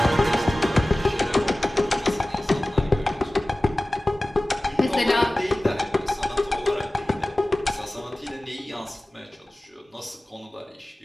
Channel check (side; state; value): both; normal; correlation 0.98